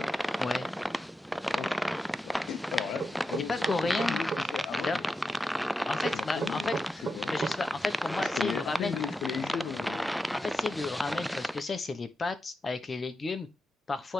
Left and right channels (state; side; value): normal; both; correlation 0.89